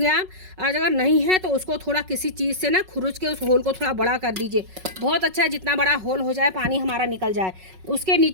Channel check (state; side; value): late; left; 5.4 ms